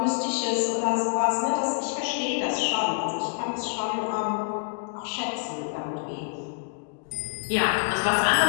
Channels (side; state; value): right; silent; digital silence